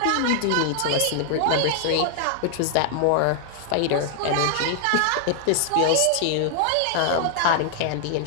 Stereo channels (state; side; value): different; both; correlation -0.01